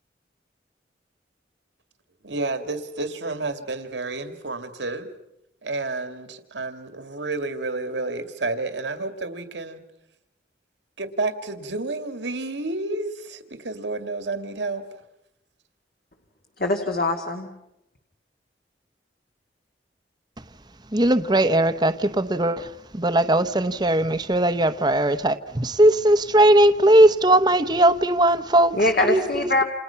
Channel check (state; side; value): normal; both; correlation 0.46